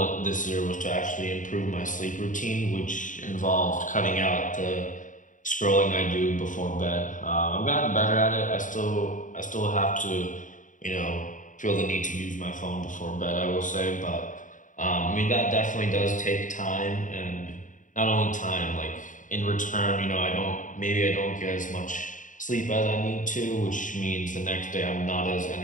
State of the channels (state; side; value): late; right; 0.37 ms